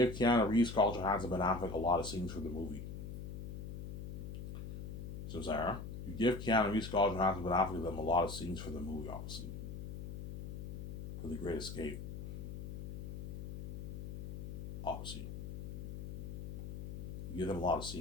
give Keanu Reeves, Scarlett Johansson, Ben Affleck a lot of scenes for the movie. So Sarah, you give Keanu Reeves, Scarlett Johansson, Ben Affleck them a lot of scenes for the movie, obviously. For The Great Escape. Obviously. You give them a lot of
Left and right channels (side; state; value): left; noise; hum, 7 dB below the sound